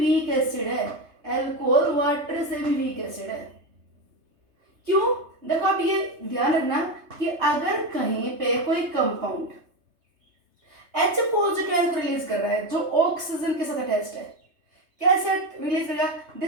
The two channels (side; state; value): left; late; 3.3 ms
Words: weak acid है. Alcohol water से भी weak acid है. क्यों? देखो आप ये ध्यान रखना कि अगर कहीं पे कोई कंपाउंड H पॉजिटिव आयन को रिलीज कर रहा है जो ऑक्सीजन के साथ अटैच्ड है, कैसे रिलीज करेगा?